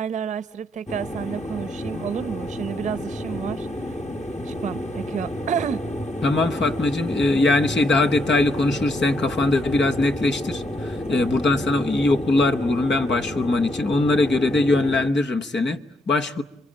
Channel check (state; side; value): normal; both; correlation 0.76